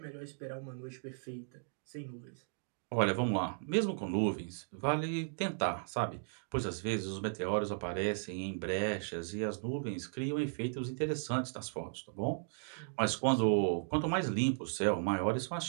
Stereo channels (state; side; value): silent; left; digital silence